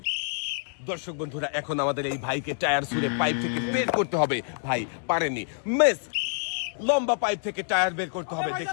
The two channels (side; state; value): right; silent; digital silence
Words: দর্শক বন্ধুরা, এখন আমাদের এই ভাইকে টায়ার ছুঁড়ে পাইপ থেকে বের করতে হবে। ভাই পারেনি, মিস। লম্বা পাইপ থেকে টায়ার বের করতে হবে।